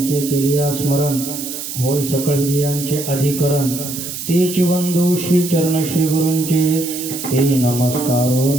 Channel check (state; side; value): noise; right; hiss, 7 dB below the sound